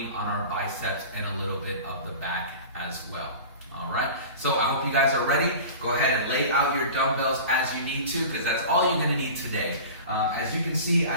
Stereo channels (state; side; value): inverted; both; correlation -0.36